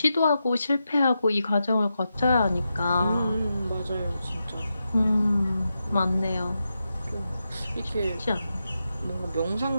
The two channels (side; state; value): both; inverted; correlation -0.88